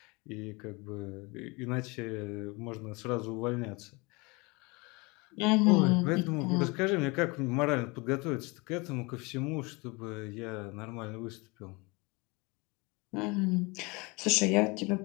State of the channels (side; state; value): right; quieter; 26.7 dB